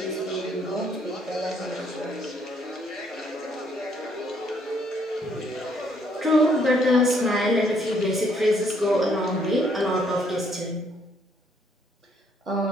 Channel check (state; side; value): normal; both; correlation 0.68